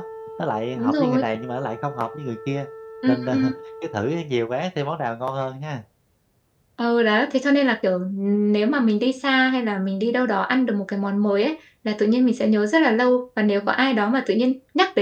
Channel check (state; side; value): identical; both; correlation 1.00